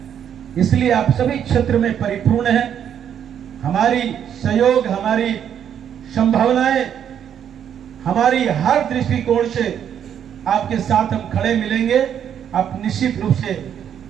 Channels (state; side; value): quieter; left; 9.0 dB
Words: इसलिए आप सभी क्षेत्र में परिपूर्ण हैं। हमारी सहयोग, हमारी संभावनाएं, हमारी हर दृष्टिकोण से आपके साथ हम खड़े मिलेंगे। आप निश्चित रूप से